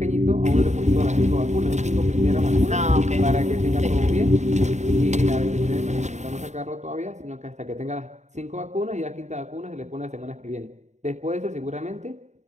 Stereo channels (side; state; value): left; late; 0.34 ms